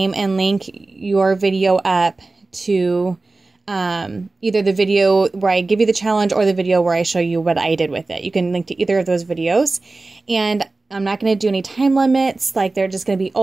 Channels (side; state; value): left; quieter; 3.4 dB